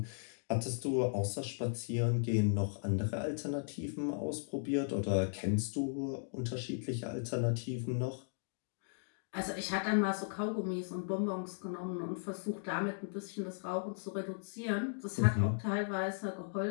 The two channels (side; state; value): right; silent; digital silence